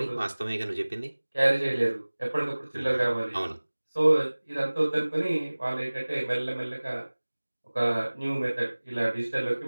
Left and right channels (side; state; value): both; inverted; correlation -1.00